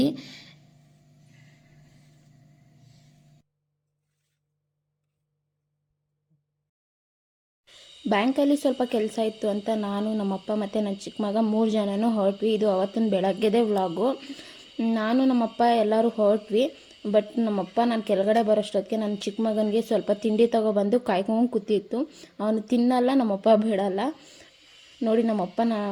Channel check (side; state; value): both; identical; correlation 1.00